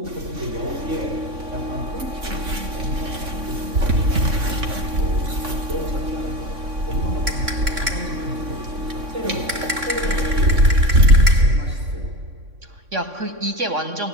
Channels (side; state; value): left; late; 3.6 ms